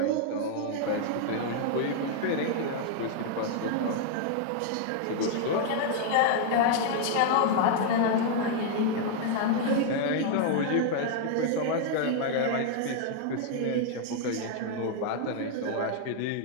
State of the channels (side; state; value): both; different; correlation 0.00